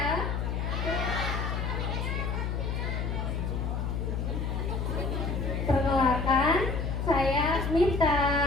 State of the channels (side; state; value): left; noise; hum, 1 dB below the sound